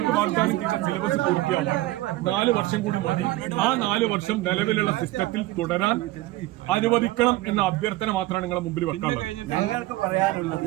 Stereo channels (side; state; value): left; quieter; 17.8 dB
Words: വാഗ്ദാനം ചെയ്ത സിലബസ് പൂർത്തിയാവാൻ 4 വർഷം കൂടി മതി. ആ 4 വർഷം നിലവിലുള്ള സിസ്റ്റത്തിൽ തുടരാൻ അനുവദിക്കണം എന്ന അഭ്യർത്ഥന മാത്രമാണ് നിങ്ങളുടെ മുമ്പിൽ വെക്കാനുള്ളത്.